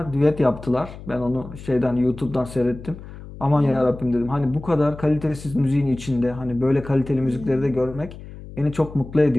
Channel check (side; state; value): left; noise; hum, 15 dB below the sound